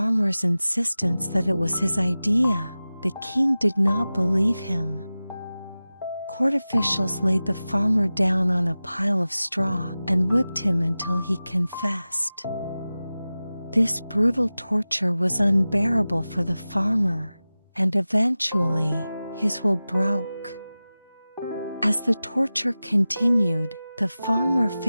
insistence that it was his idea, the king did not believe him. Court officials laid the farmer down on a pile of straw and whipped him until he confessed. This brutal torture was unbearable for the farmer, and eventually, his will broke. As the torture continued, the farmer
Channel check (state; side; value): inverted; both; correlation -0.96